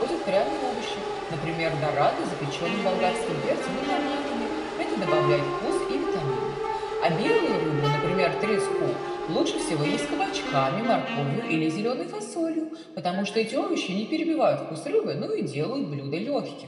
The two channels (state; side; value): identical; both; correlation 1.00